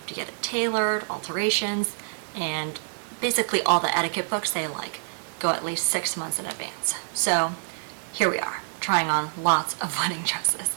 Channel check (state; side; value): silent; left; digital silence